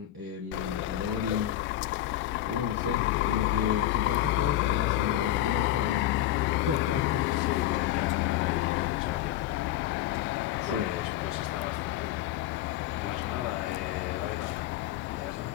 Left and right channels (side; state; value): right; quieter; 13.3 dB